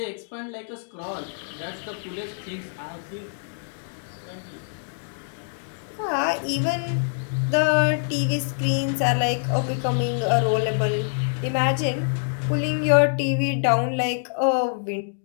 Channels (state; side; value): silent; right; digital silence